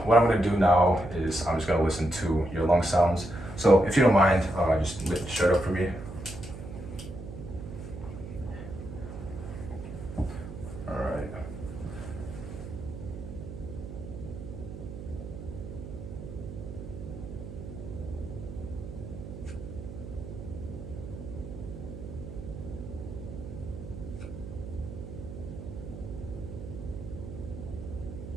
what I'm gonna do now is I'm just gonna listen to your lung sounds. So if you don't mind, just lift the shirt up for me. All right.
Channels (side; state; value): right; noise; hum, 10 dB below the sound